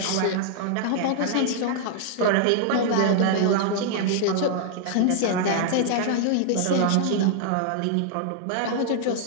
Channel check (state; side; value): different; both; correlation -0.01